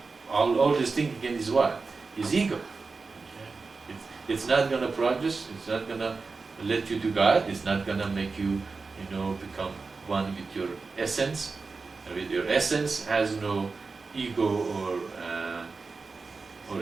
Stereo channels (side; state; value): left; quieter; 4.3 dB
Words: all this thing again is what? Is ego. It's not going to progress. It's not going to let you to God. It's not going to make you, become one with your essence. With your essence has no ego